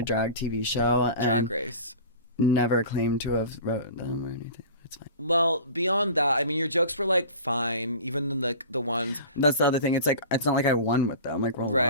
drag TV show. Drag Race. Never claimed to have wrote them or anything. It's fine. Well, beyond that, I mean, your jokes were like fine, even like the ones. That's the other thing. It's like it's not like I won with them. Like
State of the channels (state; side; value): inverted; both; correlation -0.37